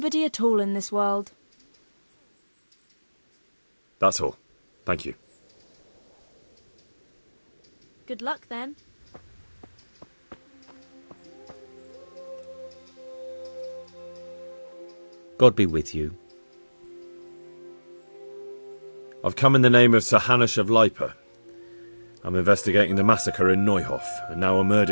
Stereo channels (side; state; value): both; inverted; correlation -1.00